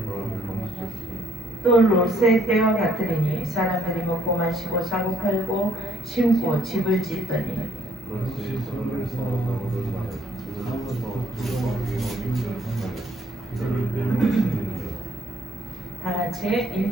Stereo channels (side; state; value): both; normal; correlation 0.66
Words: 또 롯의 때와 같으리니 사람들이 먹고 마시고 사고 팔고 심고 집을 짓더니 다같이